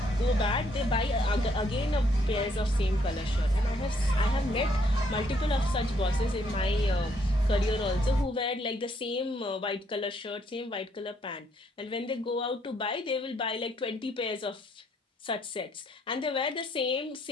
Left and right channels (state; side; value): normal; both; correlation 0.70